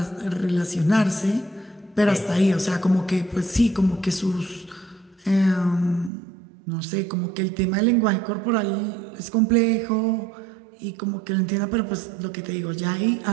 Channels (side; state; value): left; drops out; at 6.1 s